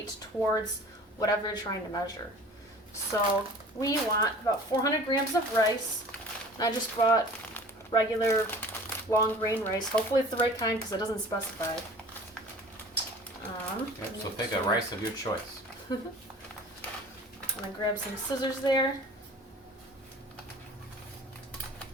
towards whatever you're trying to measure. So we want about 400 grams of rice. I just bought regular long grain rice. Hopefully it's the right kind because it doesn't specify. Yep, so pick a rice of your choice. I'm going to grab some scissors there.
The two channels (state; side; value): normal; both; correlation 0.44